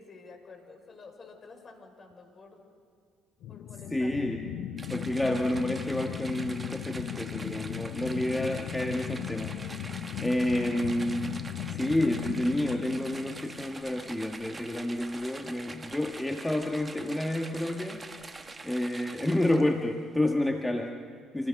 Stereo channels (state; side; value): normal; both; correlation 0.91